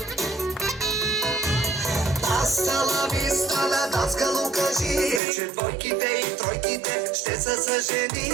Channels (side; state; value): left; drops out; at 5.2 s